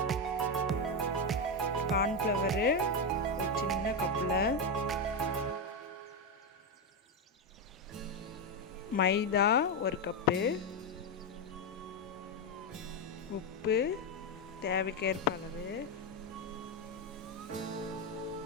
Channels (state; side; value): normal; both; correlation 0.07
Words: cornflour ஒரு சின்ன கப்பில், மைதா 1 கப்பு, உப்பு தேவைக்கேற்ப அளவு,